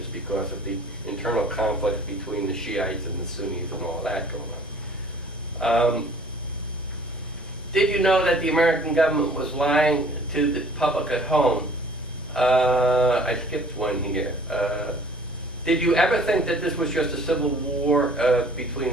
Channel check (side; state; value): both; normal; correlation 0.53